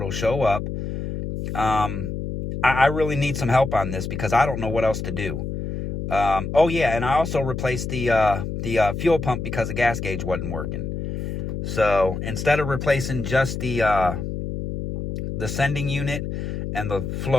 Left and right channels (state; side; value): noise; left; hum, 4 dB below the sound